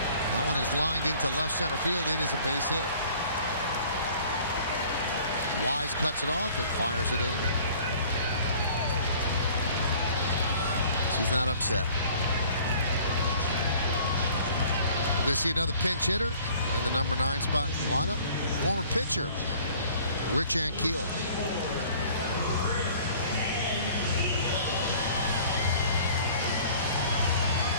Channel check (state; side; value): inverted; both; correlation -0.51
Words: That one is lined into left center field. It is a base hit. Wise cuts it off and fires it in. She's not upset. We're going to see another pinch hitter in the number 9 spot in the lineup. Former pitcher, Rich Ankiel.